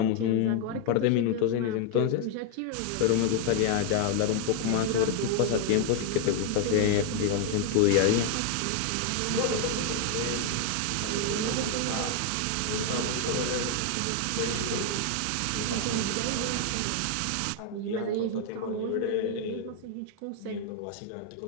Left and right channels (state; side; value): different; both; correlation 0.00